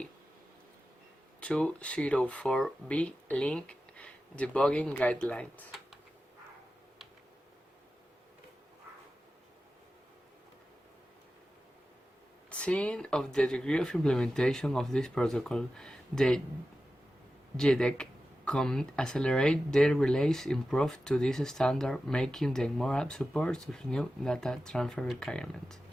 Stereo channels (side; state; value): both; normal; correlation 0.93